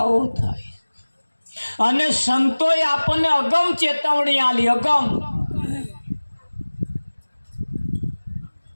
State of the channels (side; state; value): both; inverted; correlation -1.00